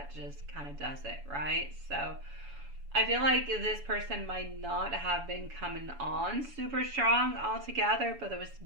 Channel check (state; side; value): late; left; 7.0 ms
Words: just kind of does it, right? So I feel like this person might not have been coming on super strong altogether, but there was